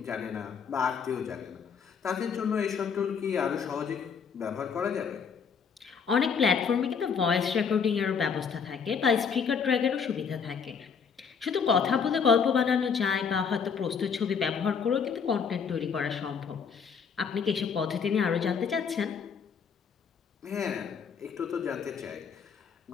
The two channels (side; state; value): right; quieter; 6.3 dB